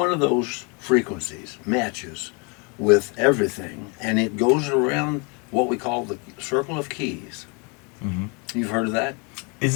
of those frequencies matches with everything, and it goes around what we call the circle of keys. Mm-hmm. You've heard of that?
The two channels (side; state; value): right; quieter; 32.6 dB